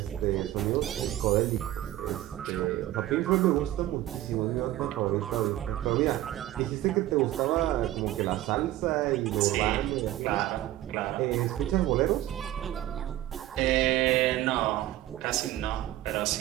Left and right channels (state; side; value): quieter; left; 14.6 dB